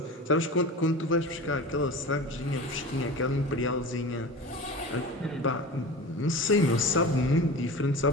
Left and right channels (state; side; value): normal; both; correlation 0.34